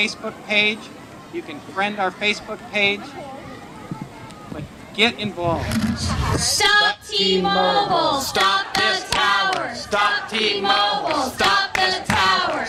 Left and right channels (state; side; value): identical; both; correlation 1.00